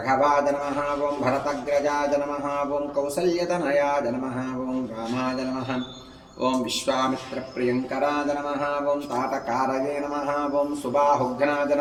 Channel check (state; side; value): identical; both; correlation 1.00